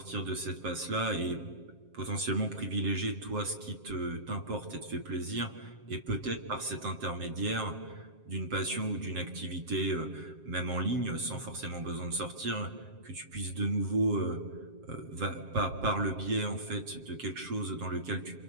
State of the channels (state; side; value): late; left; 7.5 ms